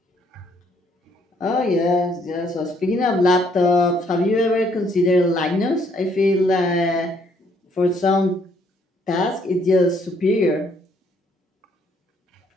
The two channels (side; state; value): both; normal; correlation 0.67